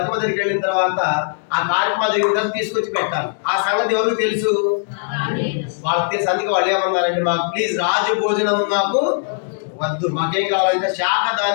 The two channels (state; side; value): silent; right; 66 dB below the other